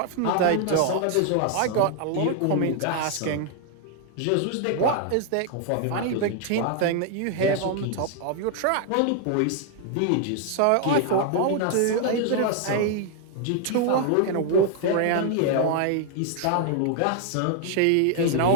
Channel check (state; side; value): different; both; correlation 0.00